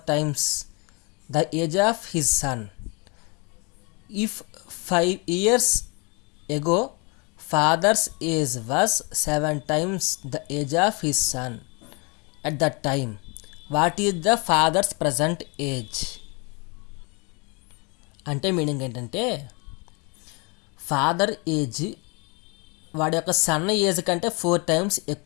times the age of his sun. If 5 years ago father's age was 7 times the age of his son at that time, what is the father's present age? అంటే మీనింగ్ ఏంటంటే ఫాదర్ ఏజ్ వాడి యొక్క సన్ ఏజ్ కంటే 4 times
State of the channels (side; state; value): right; quieter; 31.1 dB